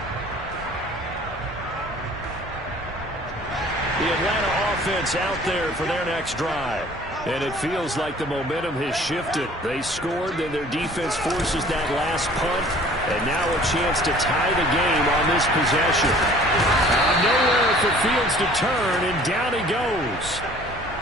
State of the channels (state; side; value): normal; both; correlation 0.51